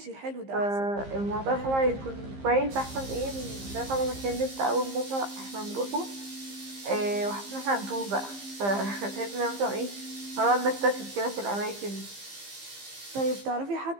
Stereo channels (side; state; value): left; late; 15 ms